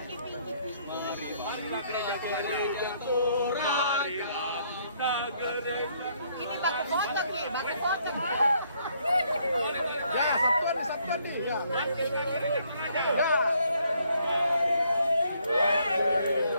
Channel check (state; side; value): inverted; both; correlation -0.68